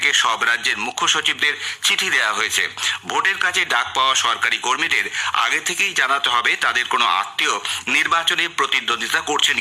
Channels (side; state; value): both; identical; correlation 1.00